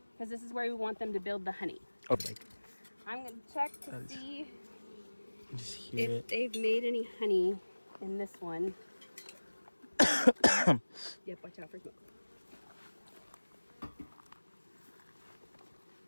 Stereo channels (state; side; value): inverted; both; correlation -1.00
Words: because this is where we want them to build the honey. Okay. I'm gonna check to see just hear if they've made any honey in this one. Yep, watch out for smoke.